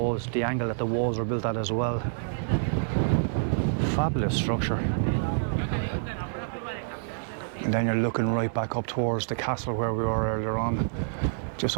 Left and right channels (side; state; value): left; silent; digital silence